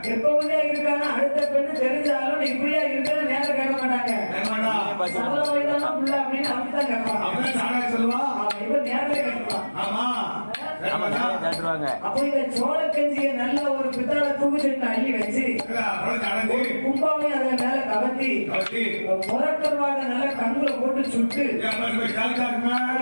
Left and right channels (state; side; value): inverted; both; correlation -1.00